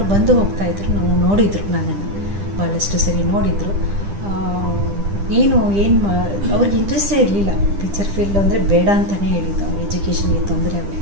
ಬಂದು ಹೋಗ್ತಾಯಿದ್ರು, ನಾವು ನೋಡಿದರು, ನನ್ನನ್ನು ಭಾಳಷ್ಟು ಸರಿ ನೋಡಿದರು. ಅವ್ರಿಗೆ ಇಂಟ್ರೆಸ್ಟೇ ಇರಲಿಲ್ಲ ಪಿಕ್ಚರ್ ಫೀಲ್ಡ್ ಅಂದರೆ, ಬೇಡ ಅಂತಲೇ ಹೇಳಿದ್ದು. ಅವ್ರ ಎಜುಕೇಷನ್ಗೆ ತೊಂದರೆ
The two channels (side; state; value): left; late; 10 ms